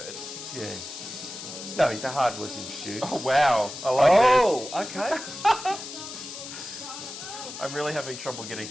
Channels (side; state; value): left; noise; hiss, 10 dB below the sound